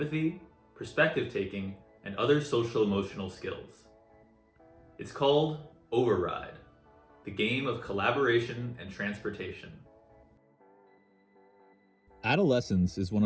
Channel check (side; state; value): both; identical; correlation 1.00